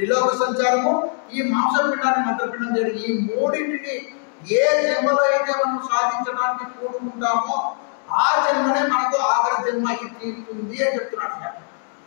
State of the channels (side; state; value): right; silent; 58 dB below the other